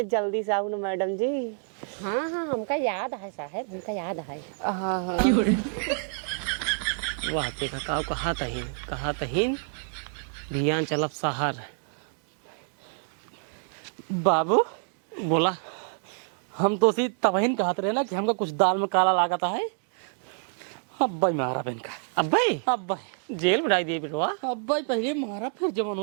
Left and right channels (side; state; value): left; silent; 60 dB below the other